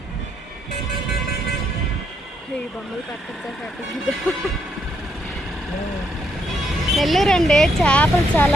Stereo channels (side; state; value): both; normal; correlation 0.75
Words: ఈ బొమ్మలు నెల్లూరు అండి, చేపలు చాలా